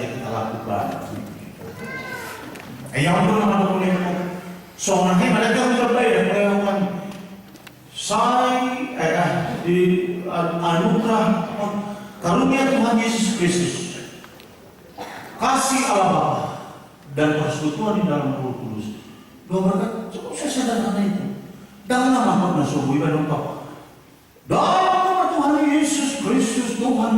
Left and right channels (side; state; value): both; identical; correlation 1.00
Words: kita lakukan. Yang belum boleh. Soalnya mereka terbaik melakukan di anugerah karunia Tuhan Yesus Kristus, kasih Allah Bapa dan persekutuan di dalam Roh Kudus. Dua berkat cukup saya sederhana itu. Dalam nama Tuhan ibadah Bapa. Dalam nama Tuhan Yesus Kristus,